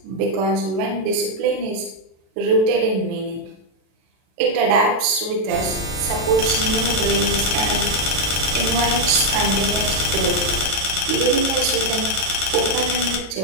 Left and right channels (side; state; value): left; late; 36 ms